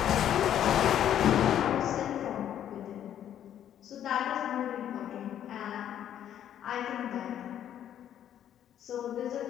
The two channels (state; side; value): quieter; right; 10.4 dB